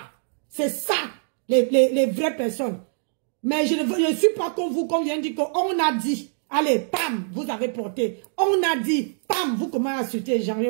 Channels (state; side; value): silent; left; digital silence